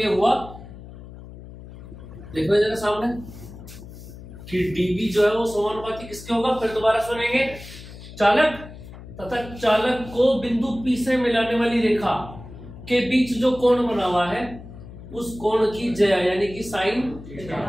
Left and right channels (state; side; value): noise; left; hum, 15 dB below the sound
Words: हुआ, देखो जरा सामने कि dB जो है वो समानुपाती किसके होगा? फिर दोबारा सुनेंगे, चालक तथा चालक को बिंदु P से मिलाने वाली रेखा के बीच जो कोण बना हुआ है उस कोण की ज्या यानी कि साइन